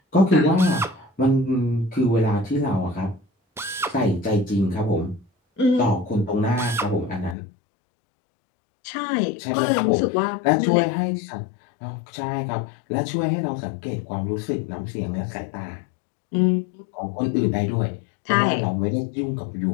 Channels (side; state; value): right; drops out; at 7.4 s